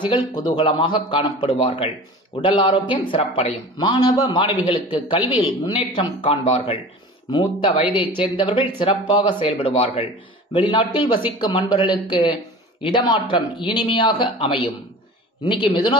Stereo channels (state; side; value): normal; both; correlation 0.38